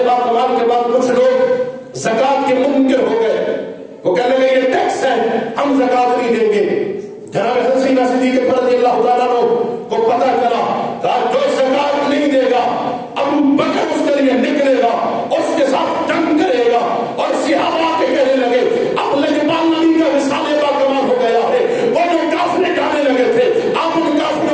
باکمال کے بعد کچھ لوگ زکات کے منکر ہو گئے، وہ کہنے لگے یہ ٹیکس ہے، ہم زکات نہیں دیں گے۔ جناب حضرت سیدنا صدیق اکبر رضی اللہ تعالیٰ عنہ کو پتہ چلا، کہا جو زکات نہیں دے گا ابو بکر اس کے لیے نکلے گا، اس کے ساتھ جنگ کرے گا۔ اور صحابہ کے کہنے لگے اب لجبان نبی کا وصال باکمال ہو گیا ہے، وہ جو کافر جانے لگے تھے آپ ان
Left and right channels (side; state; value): both; identical; correlation 1.00